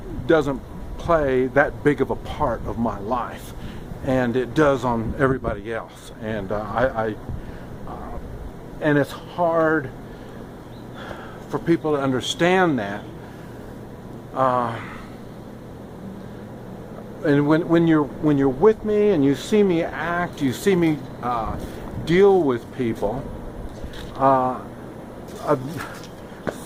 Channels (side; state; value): both; identical; correlation 1.00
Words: doesn't play that big of a part of my life, and it does on everybody else. And and it's hard for people to understand that. And when you're with me and you see me act, you see me deal with people,